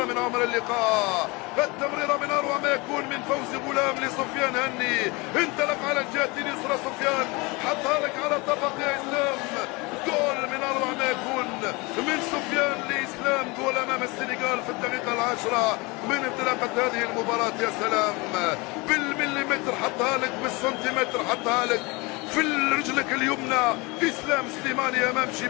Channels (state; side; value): quieter; right; 25.9 dB